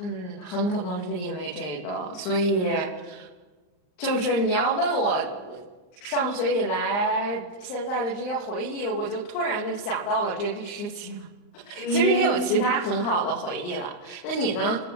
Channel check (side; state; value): right; late; 39 ms